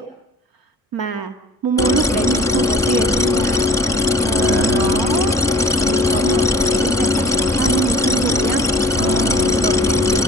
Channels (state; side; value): normal; both; correlation 0.46